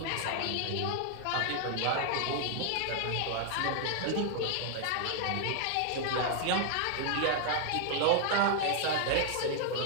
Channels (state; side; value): different; both; correlation 0.00